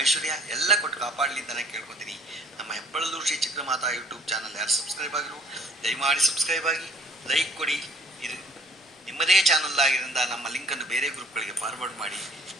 ಐಶ್ವರ್ಯ ಎಲ್ಲ ಕೊಟ್ಟು ಕಾಪಾಡಲಿ ಅಂತ ನಾನು ಕೇಳ್ಕೊತೀನಿ. ನಮ್ಮ ಹೆಬ್ಬಳದೂರು ಶ್ರೀ ಚಕ್ರಮಾತಾ ಯೂಟ್ಯೂಬ್ ಚಾನಲ್ ಯಾರು ಸಬ್ಸ್ಕ್ರೈಬ್ ಆಗಿರು, ದಯಮಾಡಿ ಸಬ್ಸ್ಕ್ರೈಬ್ ಆಗಿ, ಲೈಕ್ ಕೊಡಿ. ಇದು ನಿಮ್ಮದೇ ಚಾನಲ್ ಆಗಿರೋದ್ರಿಂದ ನಮ್ಮ ಲಿಂಕನ್ನು ಬೇರೆ ಗ್ರೂಪ್ಗಳಿಗೆ ಫಾರ್ವರ್ಡ್ ಮಾಡಿ.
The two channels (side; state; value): both; normal; correlation 0.56